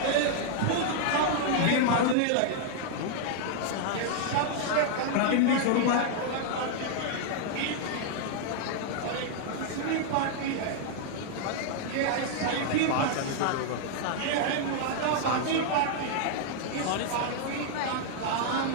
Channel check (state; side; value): different; both; correlation 0.00